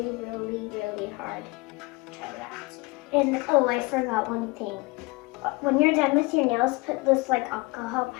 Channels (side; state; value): right; quieter; 24.7 dB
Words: hard. Try that. And oh, I forgot one thing. When you're done with your nails, put this like alcohol